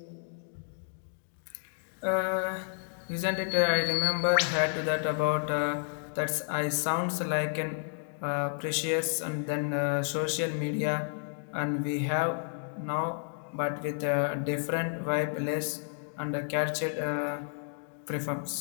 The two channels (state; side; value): silent; right; digital silence